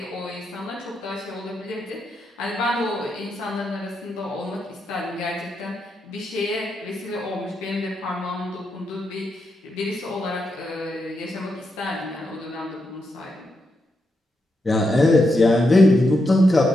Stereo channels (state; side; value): normal; both; correlation 0.84